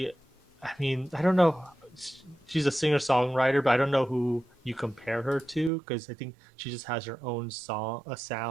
I mean, I don't know. She's a singer songwriter, but I don't know who you compare her to because I think she just has her own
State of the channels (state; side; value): drops out; left; at 5.7 s